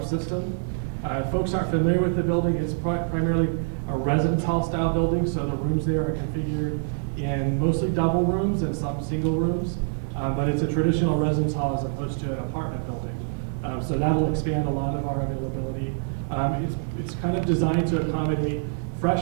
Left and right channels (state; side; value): silent; left; digital silence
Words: system. Folks aren't familiar with the building. It's primarily a residence hall style building, so the rooms there are configured in mostly double rooms and some single rooms, but it's a traditional residence hall as opposed to an apartment building. So that'll expand a lot of our availability. It's kind of designed to accommodate